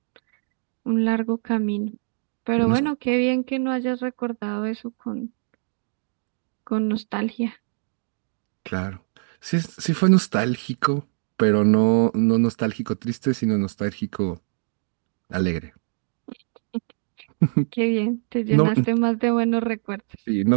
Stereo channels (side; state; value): left; silent; 62 dB below the other